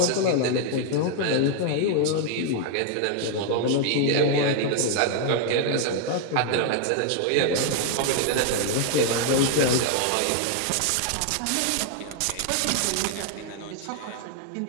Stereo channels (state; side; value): different; both; correlation 0.00